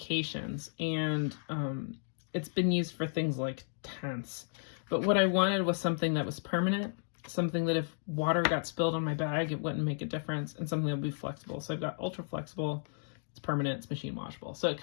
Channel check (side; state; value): right; silent; digital silence